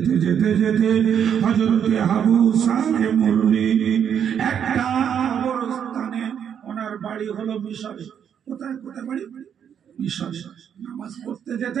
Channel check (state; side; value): quieter; left; 8.4 dB